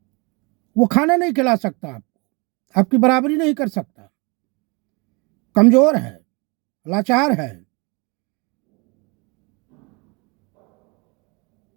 वो खाना नहीं खिला सकता आपको, आपकी बराबरी नहीं कर सकता, कमजोर है, लाचार है,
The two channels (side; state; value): left; quieter; 29.6 dB